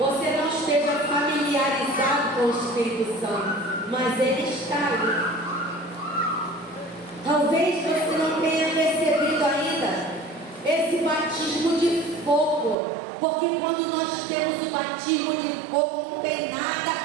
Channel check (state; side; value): drops out; left; at 12.8 s